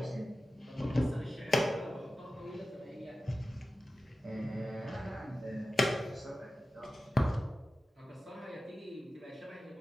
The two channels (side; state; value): both; normal; correlation 0.94